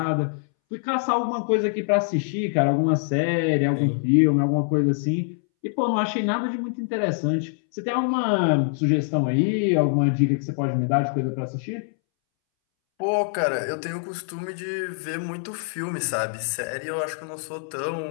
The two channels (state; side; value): silent; right; 62 dB below the other